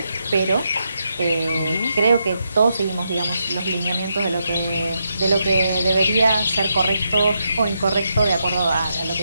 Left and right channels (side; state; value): both; inverted; correlation -0.82